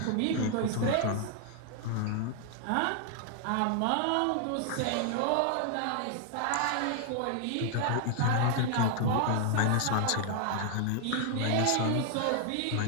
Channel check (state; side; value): different; both; correlation 0.00